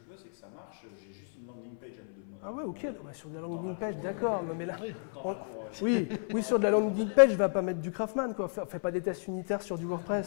veux c'est que ça marche, j'ai juste une landing page à te demander. Ah ouais, ok, sur de la landing page, d'accord. Mais là, Oui. sur de la landing page, je vais pas mettre du Craftman, quoi. Fais pas des tests unitaires sur du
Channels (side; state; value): right; silent; 56 dB below the other